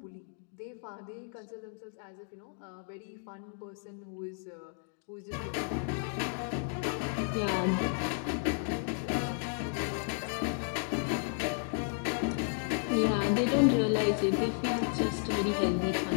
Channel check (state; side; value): silent; right; 56 dB below the other